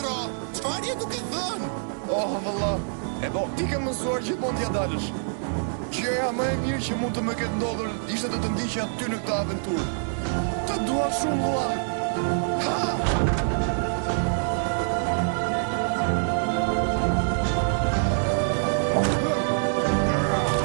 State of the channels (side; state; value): left; silent; digital silence